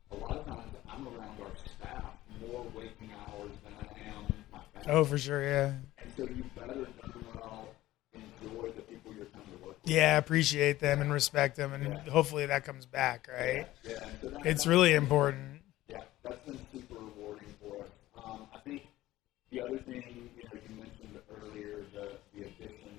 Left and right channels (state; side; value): quieter; right; 16.0 dB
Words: a lot of times I'm around our staff more waking hours than I am my family. Oh, for sure, yeah. And so you better darn well enjoy the people you're coming to work with. Yeah, appreciate them and respect them, and hopefully that comes back. Right? Yeah. And so that's really been important. Yeah, that's been super rewarding for us. I think the other thing, you mentioned earlier, the